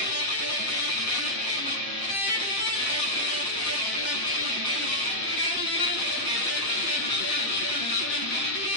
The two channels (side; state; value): right; late; 7.5 ms